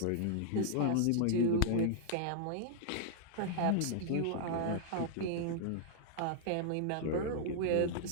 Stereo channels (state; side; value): different; both; correlation -0.01